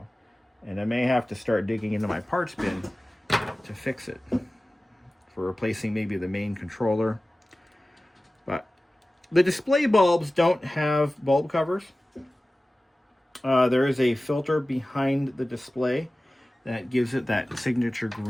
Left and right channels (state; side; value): normal; both; correlation 0.96